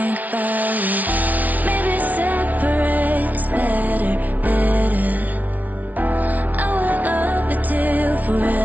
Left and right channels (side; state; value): left; late; 0.075 ms